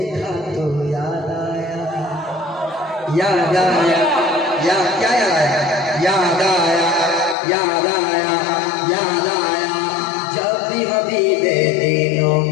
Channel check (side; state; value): right; drops out; at 7.4 s